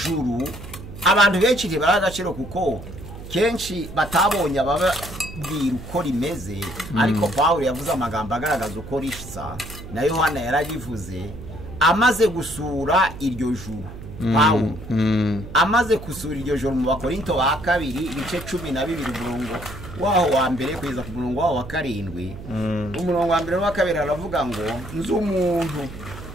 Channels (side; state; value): right; noise; hum, 13 dB below the sound